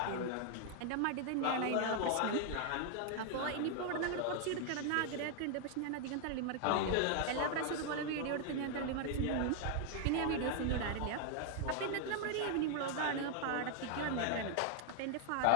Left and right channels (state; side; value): different; both; correlation 0.00